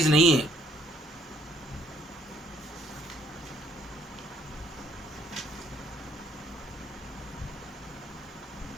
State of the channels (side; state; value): both; normal; correlation 0.65